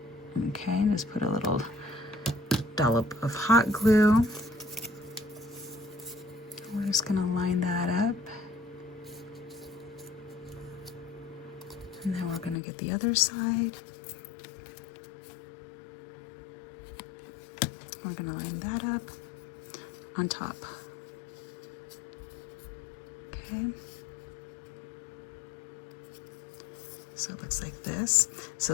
Okay, just put a little dollop of hot glue. We're just gonna line that up. And then we're gonna get the other side. We're gonna line that up on top. Okay. So it looks like this.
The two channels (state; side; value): drops out; right; at 12.6 s